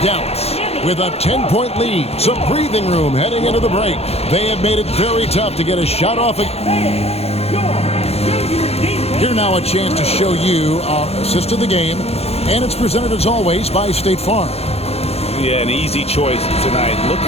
Dallas with a 10-point lead. Some breathing room heading into the break. They have made it very tough to get a shot off. Here now a chance to show you our assist of the game. And it's presented as always by State Farm. Yeah, an easy choice tonight. Look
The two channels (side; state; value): right; late; 0.30 ms